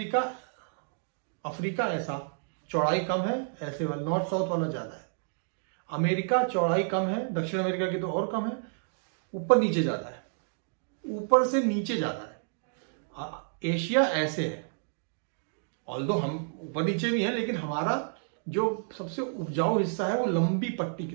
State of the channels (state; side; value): silent; left; digital silence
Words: अफ्रीका ऐसा चौड़ाई कम है, ऐसे वाला नॉर्थ साउथ वाला ज्यादा है। अमेरिका चौड़ाई कम है, दक्षिण अमेरिका की तो और कम है, ऊपर नीचे ज्यादा है, ऊपर से नीचे ज्यादा है। एशिया ऐसे है, ऑल्दो हम ऊपर नीचे भी हैं, लेकिन हमारा जो सबसे उपजाऊ हिस्सा है वो लंबी पट्टी